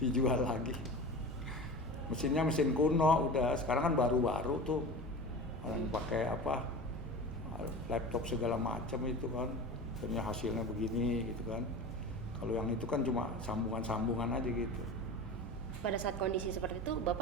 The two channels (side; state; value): both; normal; correlation 0.32